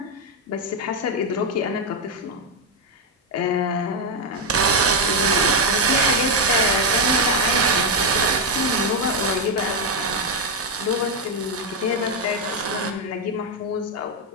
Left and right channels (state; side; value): normal; both; correlation 0.03